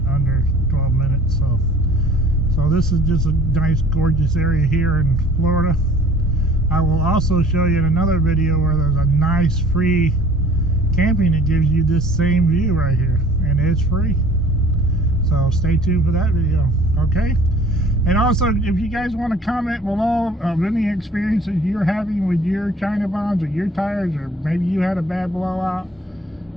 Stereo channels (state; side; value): normal; both; correlation 0.51